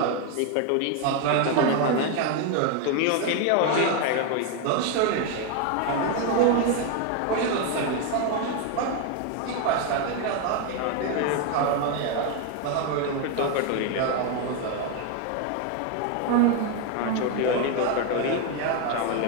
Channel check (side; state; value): both; different; correlation 0.01